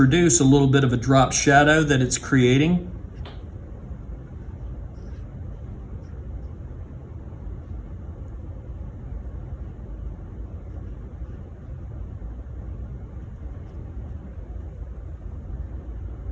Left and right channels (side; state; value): both; identical; correlation 1.00